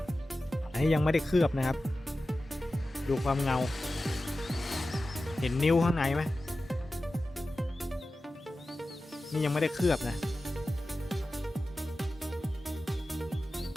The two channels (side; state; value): both; normal; correlation 0.94